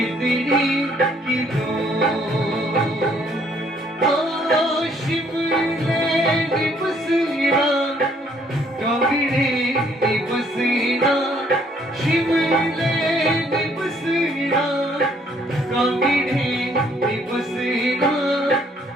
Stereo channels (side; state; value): both; normal; correlation 0.65